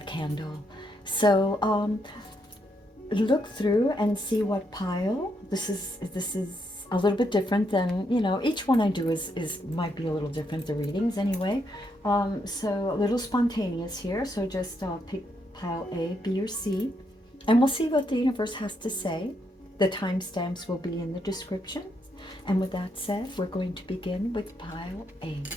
candle. So look through and see what pile. This is a little bit different than each one I do is might be a little different, the readings anyway. So a little spontaneous here, so just pick pile A, B, or C, and we'll see what the universe has to say. The timestamps will be in the description. And with that said, we're going to begin with pile A.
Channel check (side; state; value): both; normal; correlation 0.78